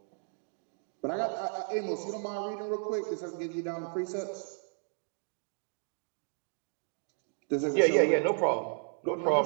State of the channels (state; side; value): silent; left; 56 dB below the other